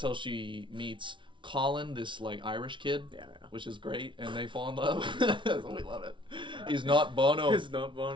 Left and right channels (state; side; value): late; left; 0.24 ms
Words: how she meets Colin, this like Irish kid, which is great, and they fall in love. We love it. He's not Bono. He's not